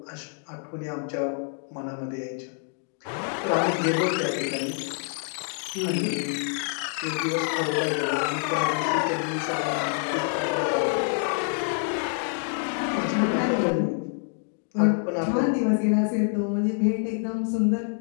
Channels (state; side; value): silent; right; 60 dB below the other